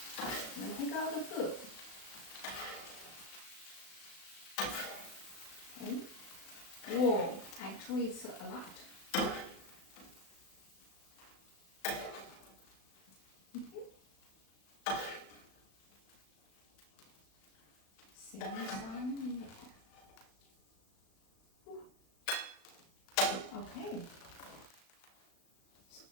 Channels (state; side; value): late; right; 36 ms